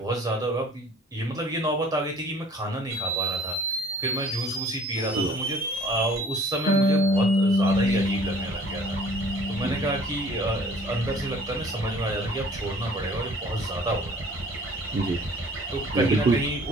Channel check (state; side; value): normal; both; correlation 0.52